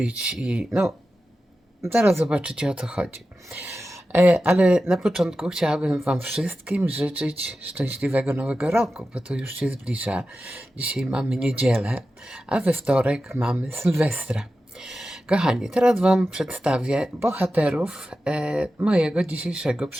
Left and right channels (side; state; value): both; normal; correlation 0.93